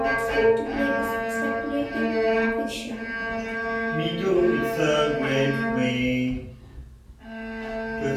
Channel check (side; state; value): both; identical; correlation 1.00